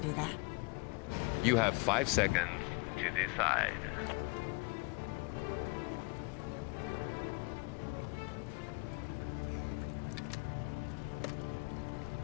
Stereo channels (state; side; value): quieter; right; 29.6 dB